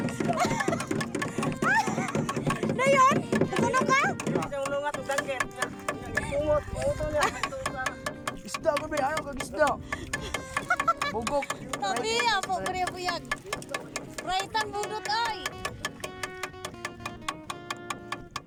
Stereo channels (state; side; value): identical; both; correlation 1.00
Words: Dayon, natulog ka? Isang lungat ng danggit. Bungot. Bungot niya. Isda ko ba? Ano kag isda? Bugok. Tabi, apo kaya buyag. Raitan budot ay.